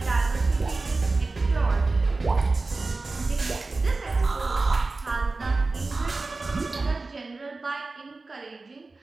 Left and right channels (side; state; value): left; quieter; 3.6 dB